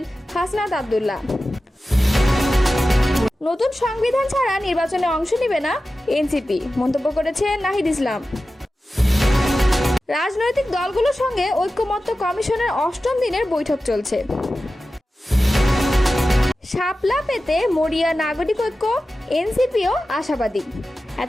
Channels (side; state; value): both; normal; correlation 0.94